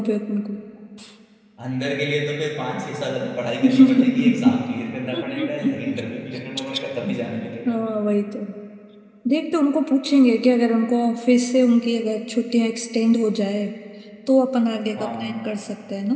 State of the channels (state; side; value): identical; both; correlation 1.00